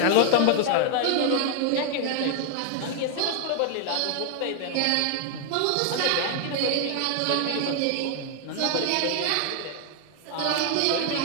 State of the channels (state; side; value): different; both; correlation 0.00